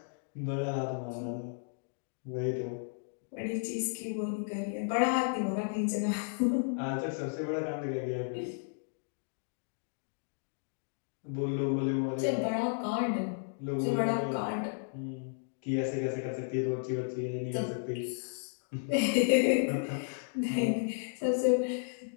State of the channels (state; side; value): silent; right; digital silence